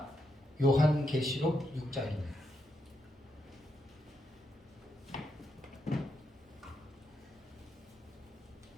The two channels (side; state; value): both; normal; correlation 0.82